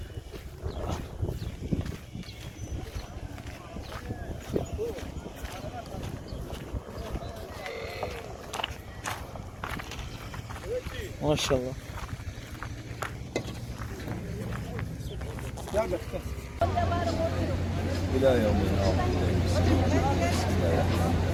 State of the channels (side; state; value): both; identical; correlation 1.00